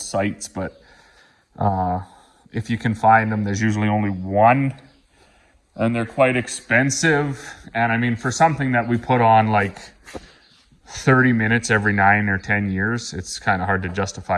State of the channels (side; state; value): both; identical; correlation 1.00